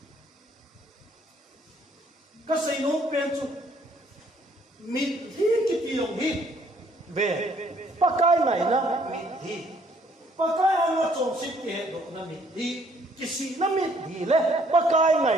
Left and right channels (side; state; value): both; normal; correlation 0.64